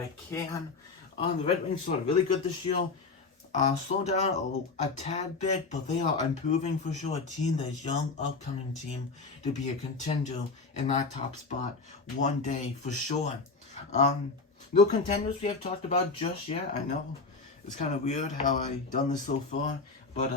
can. The Red Wings started really good this year. Slow down a tad bit, but they are improving for sure. A team that's young, upcoming team to be a contender in that top spot one day for sure. No contenders we have talked about just yet. I know it's kind of weird how I've done this so far, but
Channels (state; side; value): quieter; right; 4.1 dB